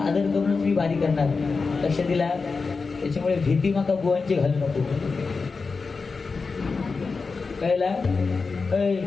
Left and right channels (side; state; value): right; quieter; 4.5 dB